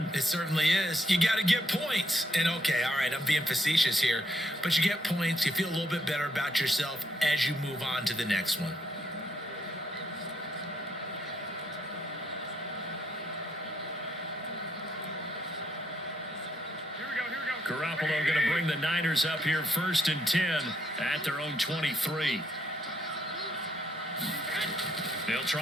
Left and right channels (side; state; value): both; normal; correlation 0.74